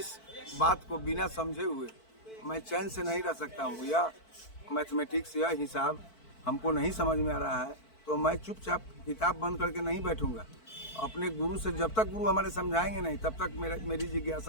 बात को बिना समझे हुए मैं चैन से नहीं रह सकता हूँ। या मैथमेटिक्स या हिसाब हमको नहीं समझ में आ रहा है तो मैं चुपचाप किताब बंद करके नहीं बैठूंगा। अपने गुरु से जब तक गुरु हमारे समझाएंगे नहीं तब तक मेरी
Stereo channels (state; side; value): late; right; 4.5 ms